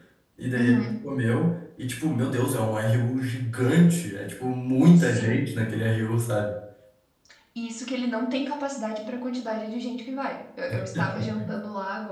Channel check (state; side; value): identical; both; correlation 1.00